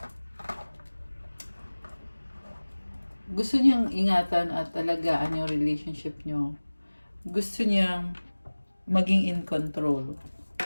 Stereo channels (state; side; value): inverted; both; correlation -1.00